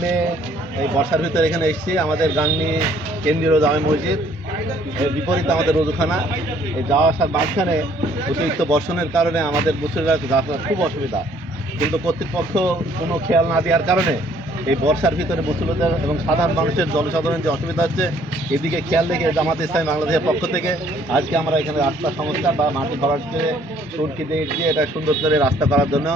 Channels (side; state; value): both; normal; correlation 0.62